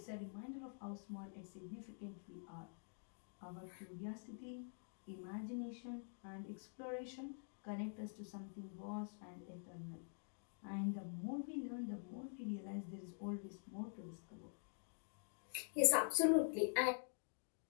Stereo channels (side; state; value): right; silent; digital silence